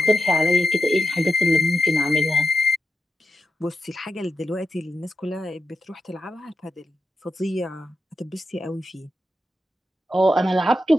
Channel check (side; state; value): both; normal; correlation 0.88